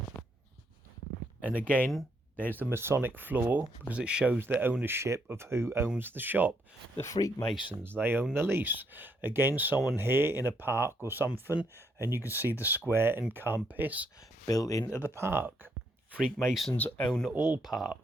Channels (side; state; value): both; normal; correlation 0.74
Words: And again, there's the Masonic floor, because it shows the ownership of who owns the shop. The Freakmasons, they own the lease. Again, someone here in a park or something, and you can see the square and compass built into the park. Freakmasons own all